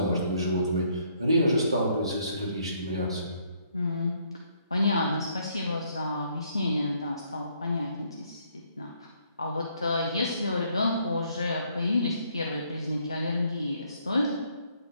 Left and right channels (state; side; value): inverted; both; correlation -0.68